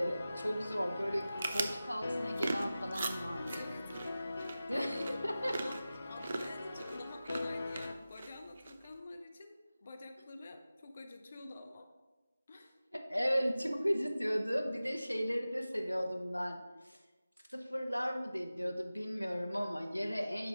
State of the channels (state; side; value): inverted; both; correlation -0.95